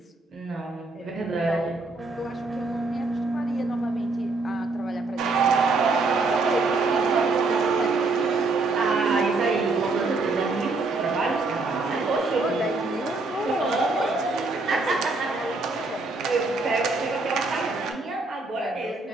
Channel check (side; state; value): left; quieter; 3.6 dB